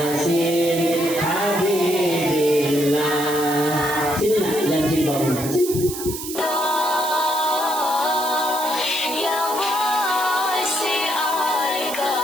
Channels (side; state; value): right; noise; hiss, 8 dB below the sound